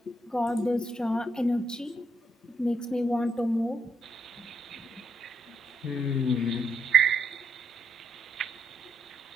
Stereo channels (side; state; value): both; normal; correlation 0.76